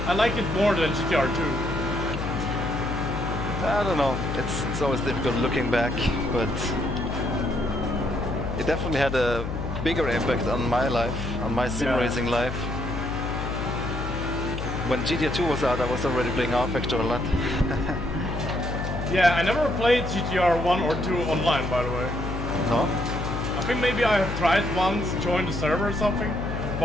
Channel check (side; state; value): left; noise; hum, 5 dB below the sound